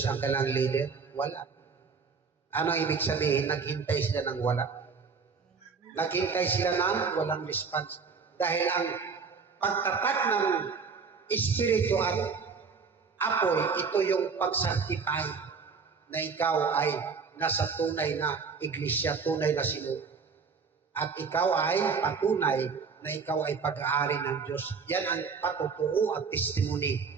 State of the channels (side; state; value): left; quieter; 5.4 dB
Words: ang kailang leader? Wala. Ano ibig sabihin? Naghintay sila ng wala. Naghintay sila ng walang response. Dahil ang pagtatak ng espiritu at apoy, ito yung pag-sanctify na ikaw ay nasa tunay na iglesia, tunay na sinuno. At ikaw ay patunay na ikaw ay pag-aari ng Diyos. Yan ang patutuo at testimony